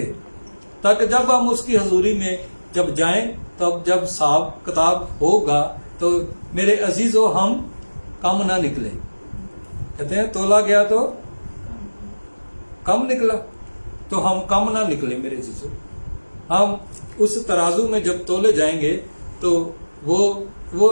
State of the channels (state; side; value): inverted; both; correlation -1.00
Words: ताकि जब हम उसकी हजूरी में जब जाएं, तब जब हिसाब किताब होगा तो मेरे अजीजों हम कम ना निकले। कहते हैं तोला गया तो कम निकला, तो हम कम ना निकले मेरे अजीजों। हम उस तराजू में जब तोले जाएंगे तो